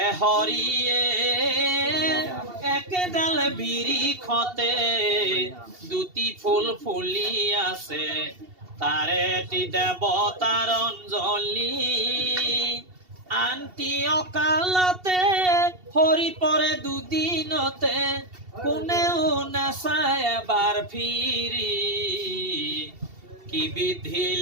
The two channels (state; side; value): late; left; 2.7 ms